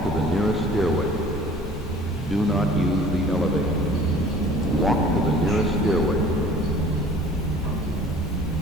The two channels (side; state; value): both; normal; correlation 0.49